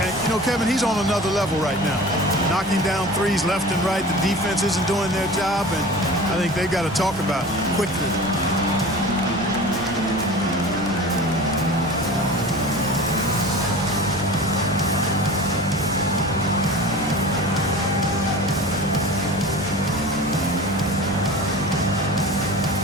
And, you know, Kevin, he's on another level right now. Knocking down threes left and right. The defense isn't doing their job, and I think they've got to talk about it quickly.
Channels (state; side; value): normal; both; correlation 0.37